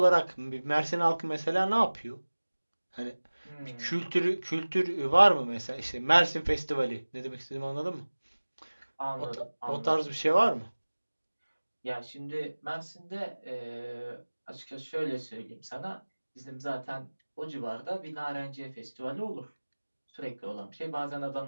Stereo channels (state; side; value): inverted; both; correlation -1.00